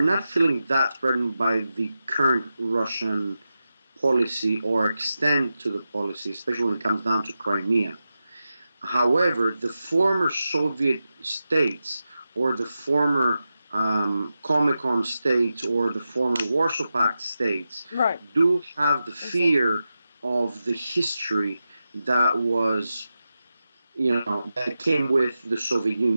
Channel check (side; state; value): both; inverted; correlation -0.91